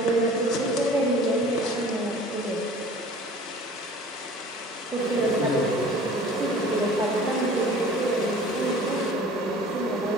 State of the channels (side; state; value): both; normal; correlation 0.46